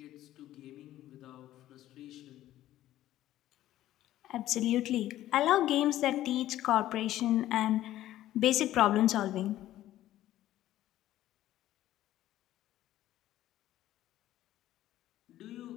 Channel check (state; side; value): quieter; right; 13.8 dB